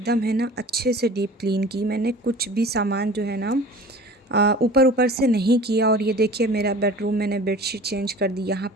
है ना अच्छे से डीप क्लीन की। मैंने कुछ भी सामान जो है ना ऊपर ऊपर से नहीं किया। और ये देखिए मेरा बेडरूम मैंने बेडशीट चेंज कर दी, यहाँ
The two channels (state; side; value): normal; both; correlation 0.42